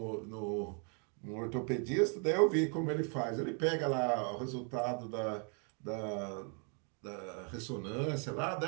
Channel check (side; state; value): left; quieter; 39.5 dB